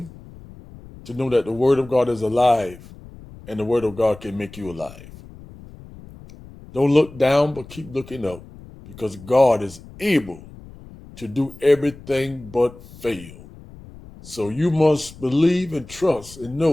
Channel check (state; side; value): noise; left; rumble, 19 dB below the sound